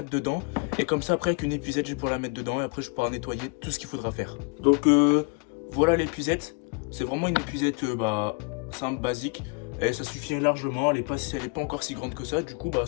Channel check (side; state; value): right; quieter; 31.7 dB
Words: dedans. Et comme ça, après avec une épuisette, je vais pouvoir la mettre dedans. Et après, je pourrai nettoyer tout ce qu'il faudra faire. Donc voilà l'épuisette. C'est vraiment une épuisette simple, basique. Et ça suffit largement. Elle est pas encore si grande que ça. Du coup,